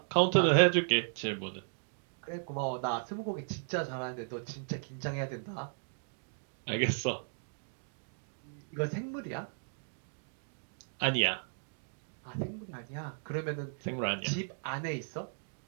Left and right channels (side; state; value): left; silent; digital silence